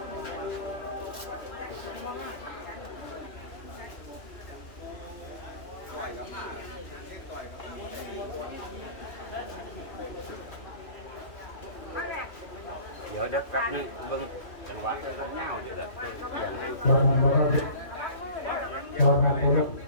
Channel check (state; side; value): late; right; 2.8 ms